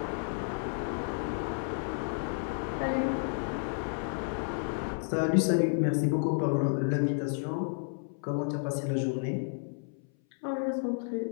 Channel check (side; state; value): right; silent; 57 dB below the other